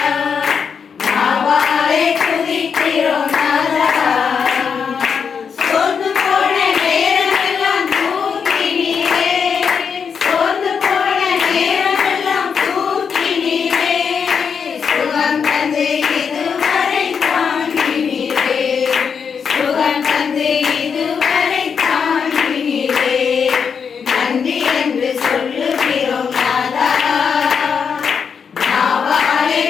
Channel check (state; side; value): quieter; right; 6.5 dB